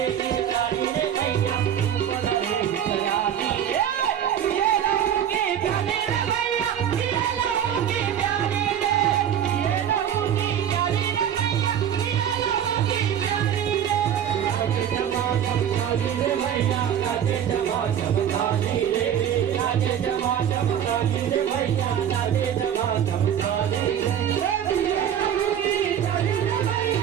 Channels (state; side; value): quieter; left; 9.5 dB